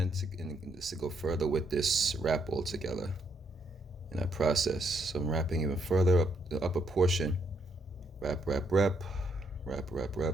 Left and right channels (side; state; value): both; normal; correlation 0.74